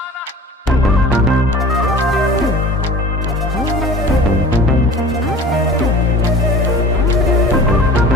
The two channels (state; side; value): normal; both; correlation 0.42